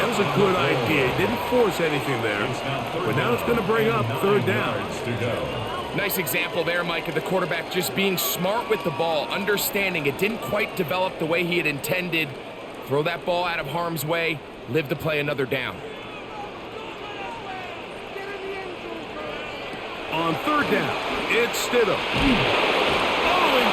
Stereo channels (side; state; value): both; identical; correlation 1.00